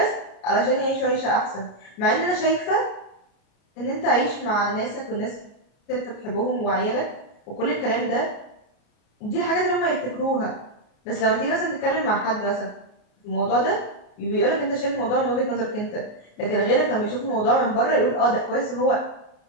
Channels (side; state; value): right; late; 33 ms